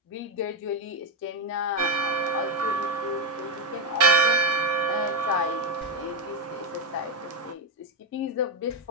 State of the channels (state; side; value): normal; both; correlation 0.05